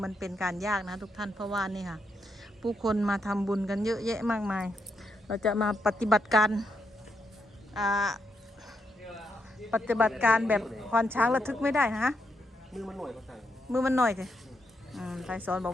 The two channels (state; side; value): normal; both; correlation 0.80